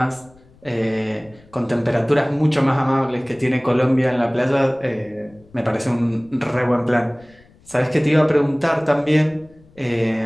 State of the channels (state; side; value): noise; left; rumble, 28 dB below the sound